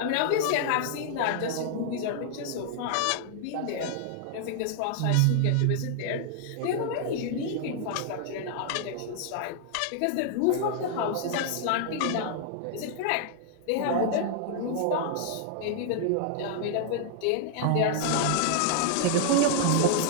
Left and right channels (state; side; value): different; both; correlation -0.01